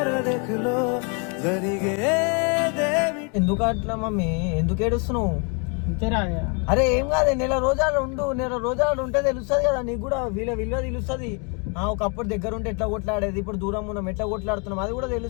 ఎందుకు అట్లా మమ్మీ? ఎందుకు ఏడుస్తున్నావు? అంతేరా అరే ఏం కాదు, నెల రోజులు ఉండు, నెల రోజులు ఉంటే తెలుస్తుంది కదా నీకు కూడా, విలువ తెలుస్తుంది. ఒకప్పుడు దగ్గర ఉంటే ఎట్లా కొట్లాడేది, ఇప్పుడు దూరం ఉన్నాం ఎట్లా కొట్లాడుతున్నాం అది కూడా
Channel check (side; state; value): right; quieter; 35.4 dB